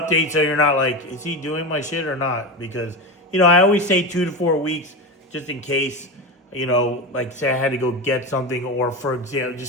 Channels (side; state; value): both; normal; correlation 0.20